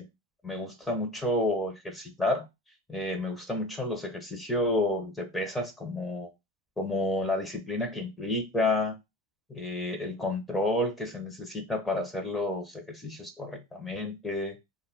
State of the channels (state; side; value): normal; both; correlation 0.38